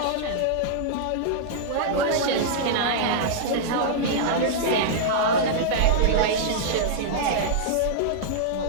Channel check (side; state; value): both; different; correlation -0.02